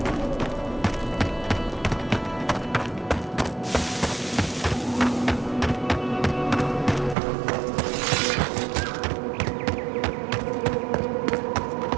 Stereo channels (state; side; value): drops out; left; at 7.2 s